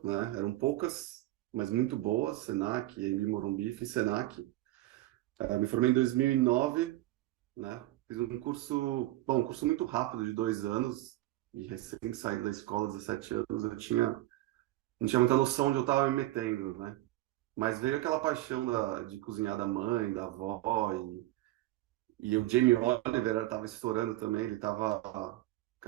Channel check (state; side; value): quieter; left; 17.0 dB